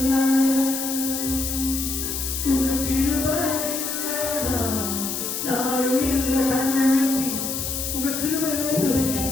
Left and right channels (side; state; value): left; noise; hiss, 3 dB below the sound